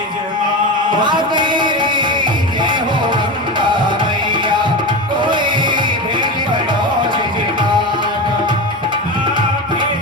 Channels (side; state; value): both; normal; correlation 0.22